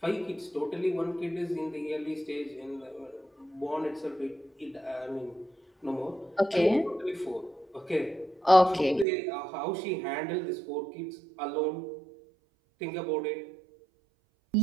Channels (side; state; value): left; drops out; at 9.1 s